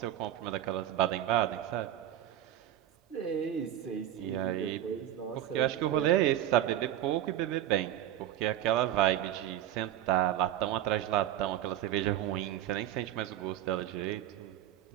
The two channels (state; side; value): quieter; left; 12.1 dB